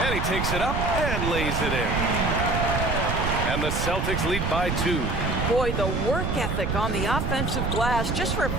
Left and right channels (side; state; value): right; noise; rumble, 1 dB below the sound